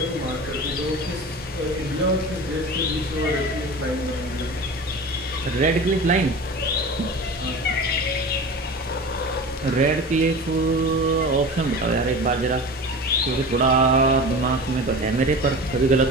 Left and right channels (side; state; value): both; normal; correlation 0.33